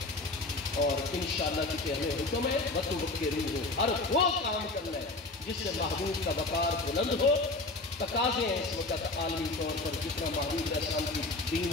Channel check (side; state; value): right; quieter; 3.1 dB